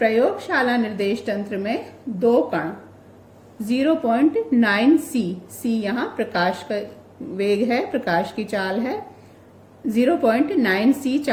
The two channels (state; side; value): identical; both; correlation 1.00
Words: निर्देश तंत्र में दो कण 0.9 c यहाँ प्रकाश का वेग है, प्रकाश की चाल है, 0.9 c